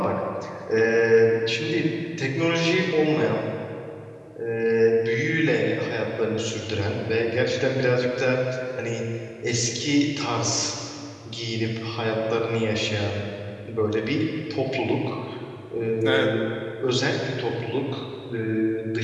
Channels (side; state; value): both; identical; correlation 1.00